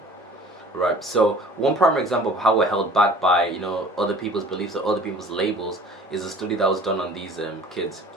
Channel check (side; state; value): both; normal; correlation 0.47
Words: right? So one primary example of how we're held back by, you know, other people's beliefs or other people's labels is a study that was done on these kids.